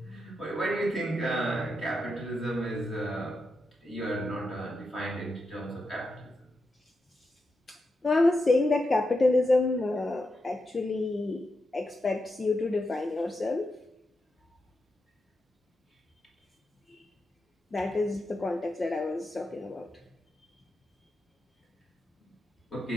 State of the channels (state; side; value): normal; both; correlation 0.86